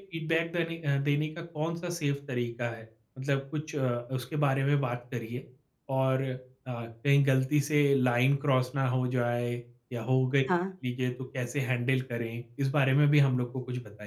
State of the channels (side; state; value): both; identical; correlation 1.00